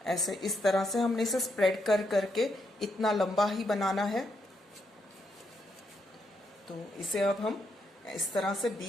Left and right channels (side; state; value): both; normal; correlation 0.79